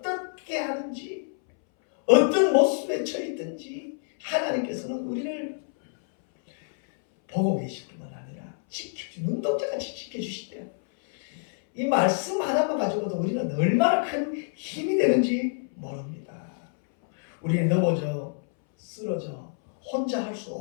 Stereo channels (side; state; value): right; silent; 60 dB below the other